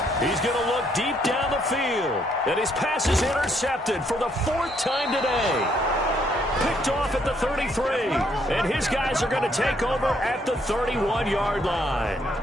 He's going to look deep down the field. And his pass is intercepted for the 4th time today. Picked off at the 33. And his guys are going to take over at the 31-yard line.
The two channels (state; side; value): normal; both; correlation 0.70